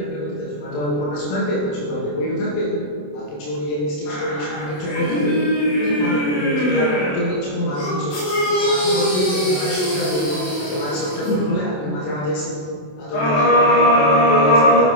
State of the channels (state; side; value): late; right; 27 ms